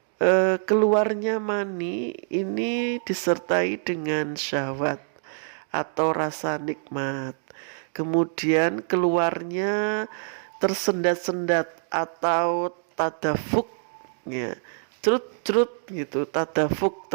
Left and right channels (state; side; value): silent; left; digital silence